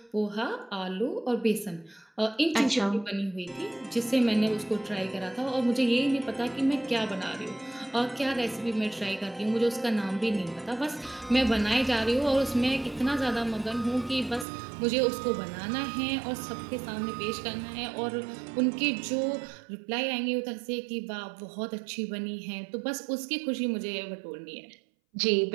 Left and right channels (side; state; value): left; drops out; at 14.5 s